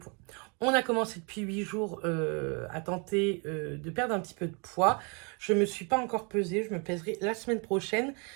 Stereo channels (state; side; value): quieter; left; 34.2 dB